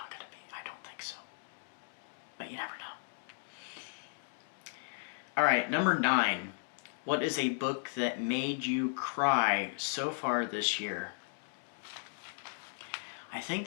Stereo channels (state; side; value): silent; right; digital silence